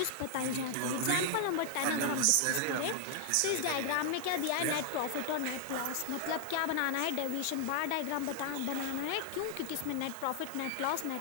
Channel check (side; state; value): both; different; correlation 0.00